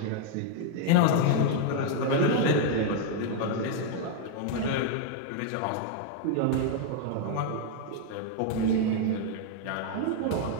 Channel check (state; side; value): different; both; correlation 0.00